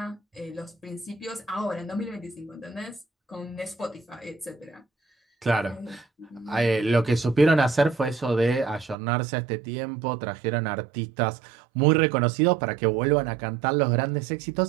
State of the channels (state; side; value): drops out; left; at 9.0 s